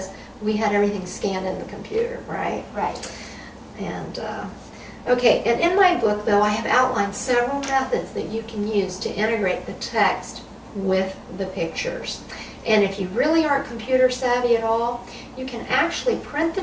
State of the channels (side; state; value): both; identical; correlation 1.00